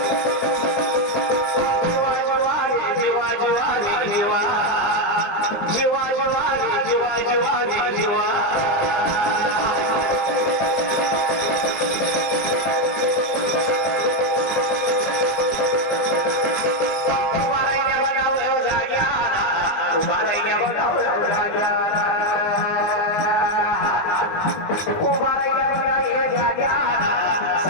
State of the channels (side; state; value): right; late; 19 ms